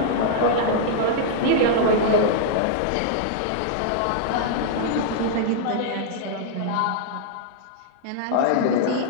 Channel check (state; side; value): different; both; correlation -0.01